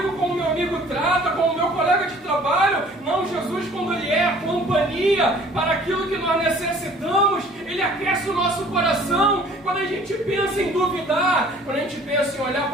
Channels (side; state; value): both; normal; correlation 0.52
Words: como meu amigo trata, como meu colega de trabalho. Não, Jesus, quando Ele é a companhia para aquilo que nós necessitamos, Ele aquece o nosso coração. Quando a gente pensa em duvidar, quando a gente pensa em olhar